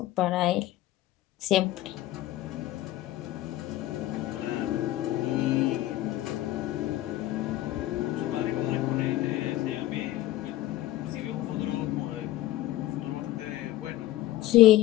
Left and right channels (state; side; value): quieter; right; 15.1 dB